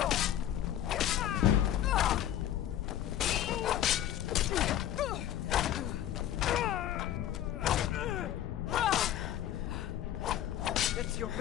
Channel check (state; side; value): quieter; right; 11.6 dB